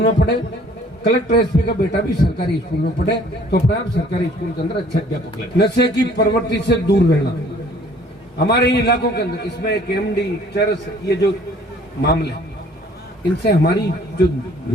में पढ़े, कलेक्टर एसपी का बेटा भी सरकारी स्कूल में पढ़े, तो अपने आप सरकारी स्कूल के अंदर अच्छे अध्यापक लगे। नशे की प्रवृत्ति से दूर रहना हमारे इन इलाकों के अंदर, इसमें एक एमडी, चरस, ये जो मामले, इनसे हमारी जो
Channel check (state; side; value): normal; both; correlation 0.56